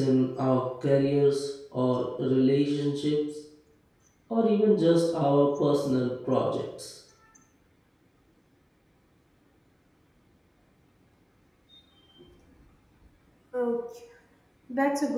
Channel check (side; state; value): both; identical; correlation 1.00